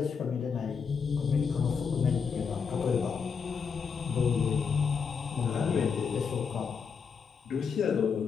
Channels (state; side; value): quieter; right; 6.0 dB